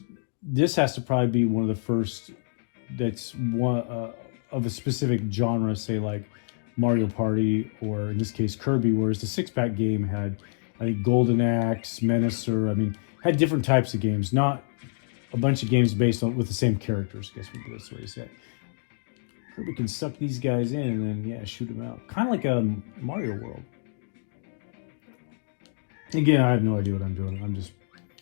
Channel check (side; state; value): right; silent; digital silence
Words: this has to probably be one of the first that's one of a specific genre, say like Mario Party, or in this case Kirby, whereas the 6-pack game had like Golden Axe, Menacer, I mean, had different types of games, not a bunch of games based on with the same characters. I guess that's what he said. Kirby can suck these guys in and then shoot them out, kind of like a Mario World. Again, I have no idea what I'm doing. I'm just